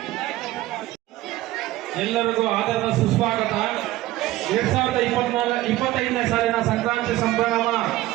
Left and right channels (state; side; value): quieter; left; 16.5 dB